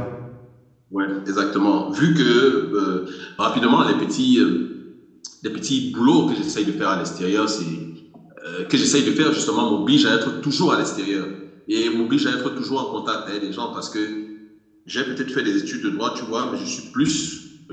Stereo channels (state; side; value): identical; both; correlation 1.00